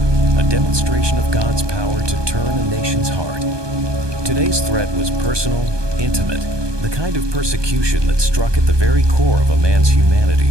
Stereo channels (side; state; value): left; late; 1.2 ms